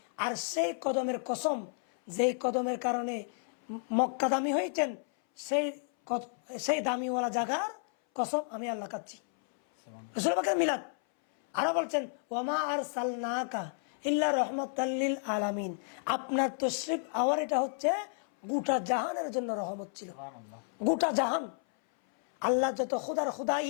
আর সেই কদমের কসম, যেই কদমের কারণে মক্কা দামি হয়েছেন, সেই দামিওয়ালা জায়গার কসম আমি আল্লাহ খাচ্ছি। রাসূল পাকের মিলাদ আরো বলছেন ওয়ামা আরসালনাকা ইল্লা রাহমাতাল লিল আলামিন। আপনার তশরিফ আওয়ার এটা হচ্ছে গোটা জাহানের জন্য রহমত ছিল। গোটা জাহান, আল্লাহ যত খুদার খুদাই,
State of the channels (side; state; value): right; silent; 57 dB below the other